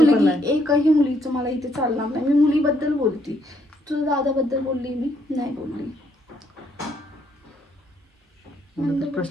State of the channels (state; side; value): normal; both; correlation 0.71